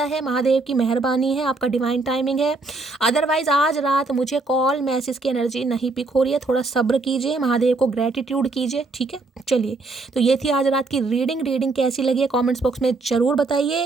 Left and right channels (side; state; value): left; quieter; 3.5 dB